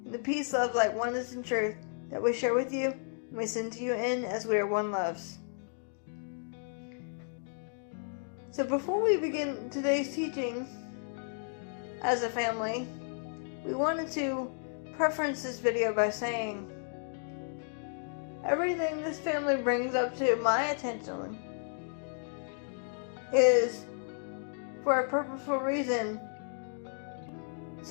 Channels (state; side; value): silent; right; digital silence